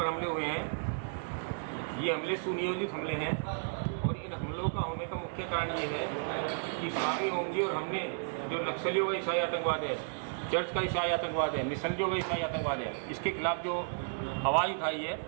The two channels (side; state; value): left; silent; digital silence